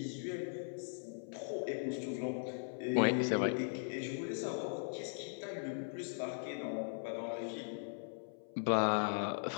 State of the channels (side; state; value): right; silent; 52 dB below the other